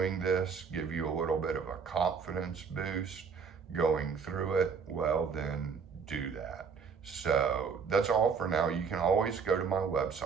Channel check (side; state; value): left; quieter; 5.9 dB